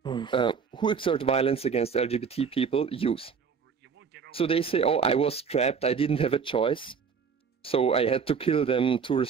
who exert violence against LGBT people use. So they say, oh, I was trapped, I didn't have a choice, so I had to kill them to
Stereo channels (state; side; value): quieter; left; 6.1 dB